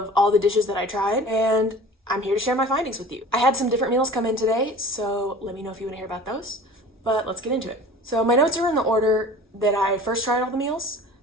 all the dishes that I tried, and I'm here to share my findings with you. I had some different meals come in today, so let me know if you want to hear about those, but let's get into it. So my notes are in the order that I first tried all the meals.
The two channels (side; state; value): both; normal; correlation 0.41